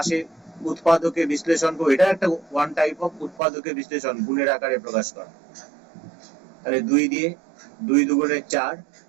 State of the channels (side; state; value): left; drops out; at 3.4 s